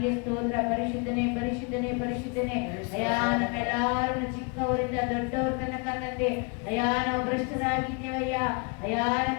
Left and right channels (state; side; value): quieter; right; 33.4 dB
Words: ಸ್ತೋತ್ರ. ಪರಿಶುದ್ಧನೇ ಪರಿಶುದ್ಧನೇ ಪರಿಶುದ್ಧನೇ. ಅಯ್ಯ ನಮ್ಮೆಲ್ಲರೂ ಚಿಕ್ಕವರಿಂದ ದೊಡ್ಡವರ ತನಕ ತಂದೆ ಅಯ್ಯ ನಾವು ಭ್ರಷ್ಟರಾಗಿದ್ದೇವಯ್ಯ. ಅಯ್ಯ